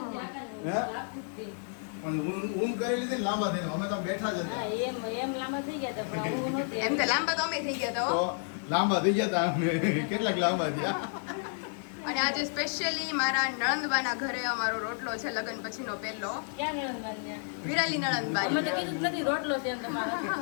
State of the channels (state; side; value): silent; right; 57 dB below the other